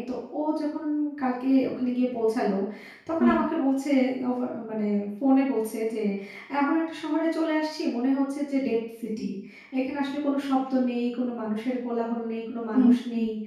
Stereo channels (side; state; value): both; identical; correlation 1.00